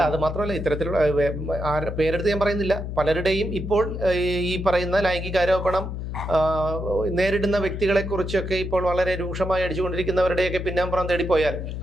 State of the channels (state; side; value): noise; left; hum, 5 dB below the sound